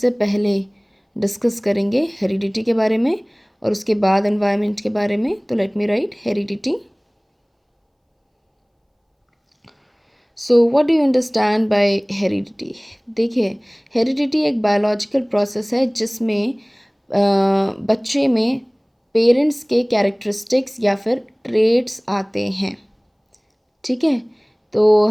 पहले discuss करेंगे heredity के बारे में और उसके बाद एनवायरनमेंट के बारे में. तो let me right heredity. So what do you understand by heredity? देखिए, हेरिडिटी एक बायोलॉजिकल प्रोसेस है जिसमें बच्चे में पेरेंट्स के कैरेक्टरिस्टिक्स या फिर ट्रेट्स आते हैं. ठीक है, तो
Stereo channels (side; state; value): both; identical; correlation 1.00